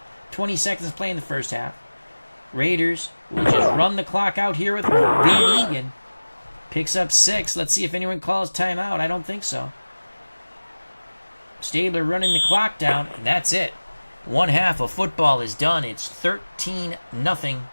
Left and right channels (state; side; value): inverted; both; correlation -1.00